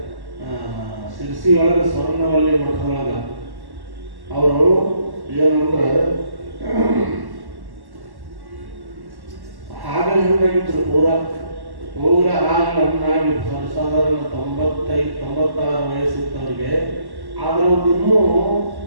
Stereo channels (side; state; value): left; late; 1.1 ms